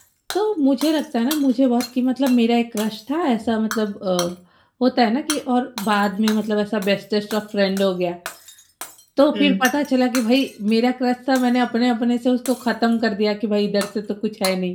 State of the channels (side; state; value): both; identical; correlation 1.00